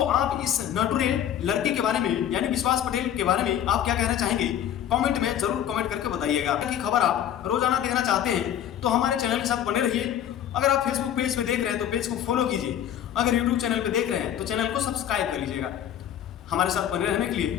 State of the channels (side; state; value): right; quieter; 10.4 dB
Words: आप इस नटुरे लड़के के बारे में यानी विश्वास पटेल के बारे में आप क्या कहना चाहेंगे, कमेंट में जरूर कमेंट करके बताइएगा। की खबर आप रोजाना देखना चाहते हैं तो हमारे चैनल के साथ बने रहिए। अगर आप फेसबुक पेज पे देख रहे हैं तो पेज को फॉलो कीजिए, अगर यूट्यूब चैनल पे देख रहे हैं तो चैनल को सब्सक्राइब कर लीजिएगा। हमारे साथ बने रहने के